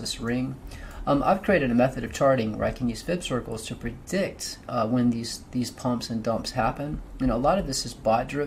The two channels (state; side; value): identical; both; correlation 1.00